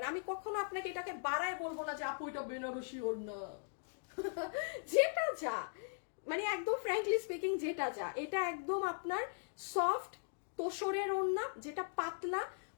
আমি কখনো আপনাকে এটাকে বাড়ায় বলবো না যে আপু এটা বেনারসি ওড়না যেটা যা মানে একদম ফ্র্যাঙ্কলি স্পিকিং যেটা যা, এটা একদম আপনার সফট তোষরের ওড়না, যেটা পাতলা।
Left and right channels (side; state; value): right; silent; digital silence